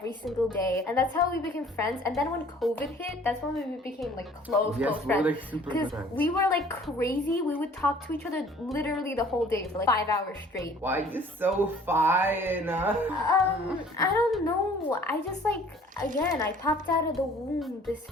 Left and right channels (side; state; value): both; normal; correlation 0.53